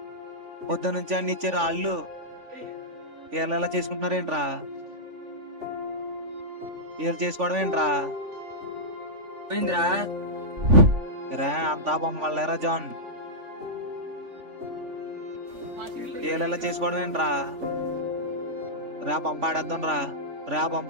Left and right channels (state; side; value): late; left; 3.5 ms